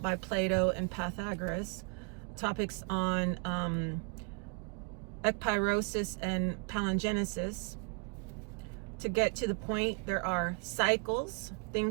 by Plato and Pythagoras. Topics on ekpyrosis and palingenesis. To get to the point, there are cycles.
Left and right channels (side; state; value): left; quieter; 34.1 dB